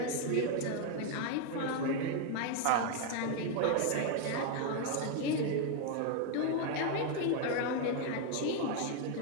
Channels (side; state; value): both; different; correlation 0.01